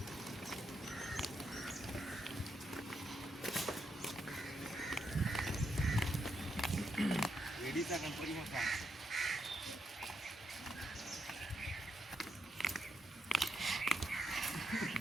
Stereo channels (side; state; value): both; normal; correlation 0.81